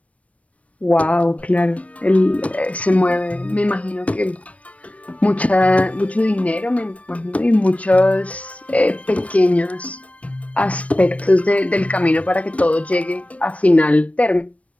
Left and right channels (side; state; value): right; late; 0.065 ms